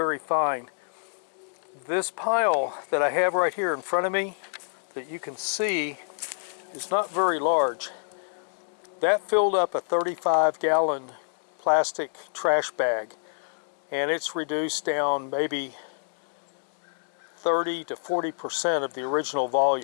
fine. This pile that I have right here in front of me that you can see is not very large. That filled up a 35-gallon plastic trash bag, and it's reduced down maybe 30 to 40% of the original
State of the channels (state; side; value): silent; right; digital silence